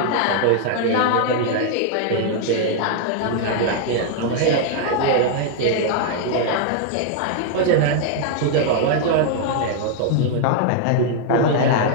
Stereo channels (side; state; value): both; different; correlation 0.00